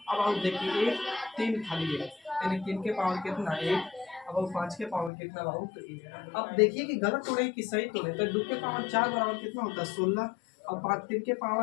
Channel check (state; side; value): drops out; right; at 5.1 s